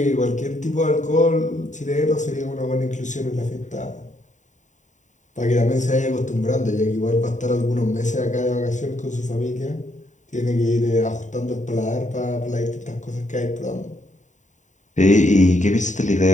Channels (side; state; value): right; late; 0.36 ms